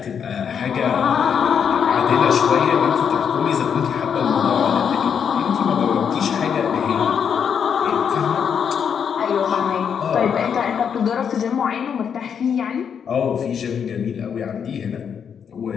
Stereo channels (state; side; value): quieter; right; 7.4 dB